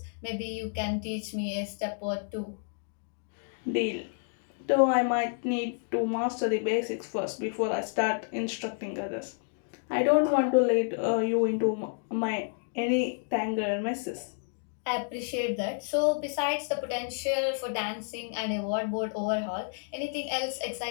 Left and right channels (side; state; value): right; silent; digital silence